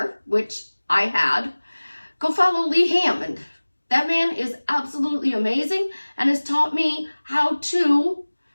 which I had, go follow Lee Hammond. That man is absolutely amazing and has taught me how to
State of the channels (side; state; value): both; inverted; correlation -1.00